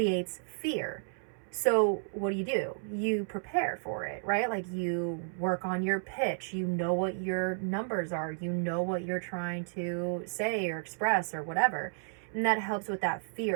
fear. So what do? You prepare for it, right? Like, you work on your pitch. You know what your numbers are. You know what you're trying to say or express or whatever. And that helps with that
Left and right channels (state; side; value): silent; left; 56 dB below the other